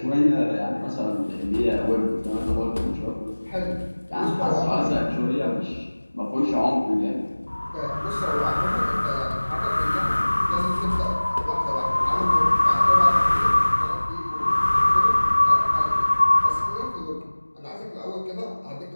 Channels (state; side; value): inverted; both; correlation -1.00